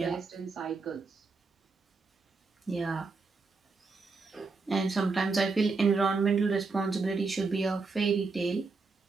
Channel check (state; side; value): quieter; left; 4.2 dB